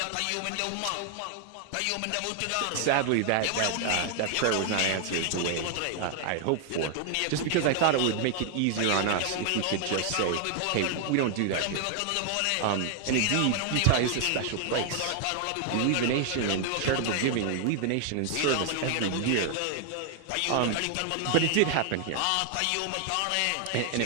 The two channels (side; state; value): both; different; correlation 0.00